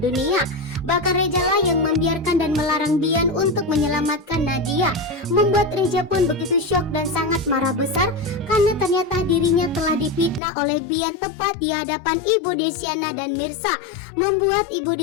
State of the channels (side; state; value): right; drops out; at 10.4 s